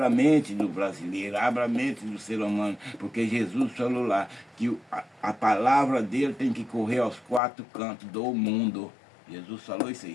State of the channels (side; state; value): right; drops out; at 7.4 s